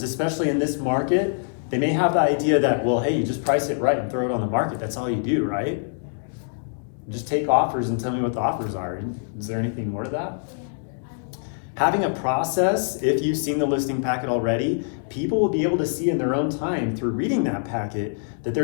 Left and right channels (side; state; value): right; silent; digital silence